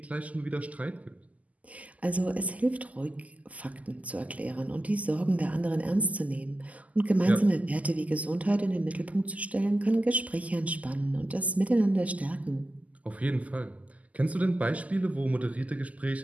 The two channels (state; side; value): late; left; 0.074 ms